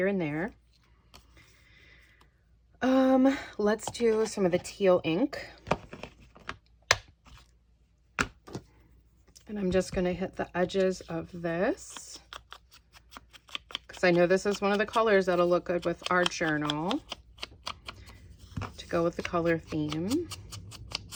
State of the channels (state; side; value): identical; both; correlation 1.00